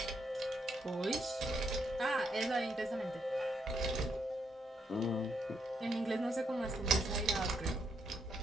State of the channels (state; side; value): normal; both; correlation 0.77